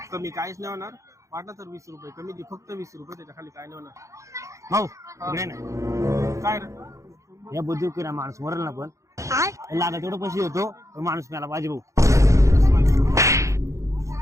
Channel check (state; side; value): late; left; 0.15 ms